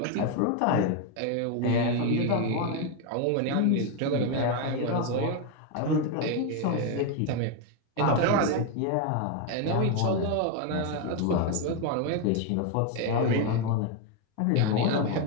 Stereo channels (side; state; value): both; different; correlation 0.01